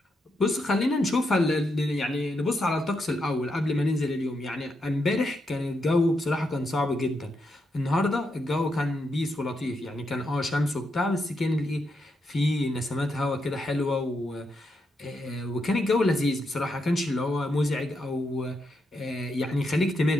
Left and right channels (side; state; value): both; normal; correlation 0.82